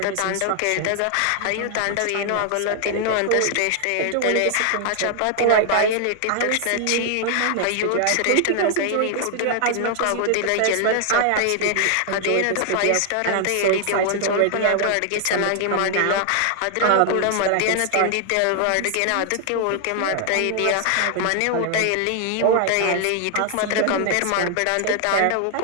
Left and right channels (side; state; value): both; different; correlation 0.00